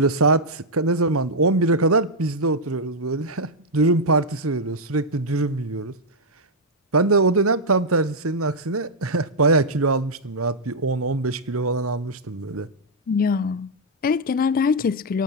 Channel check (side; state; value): both; normal; correlation -0.04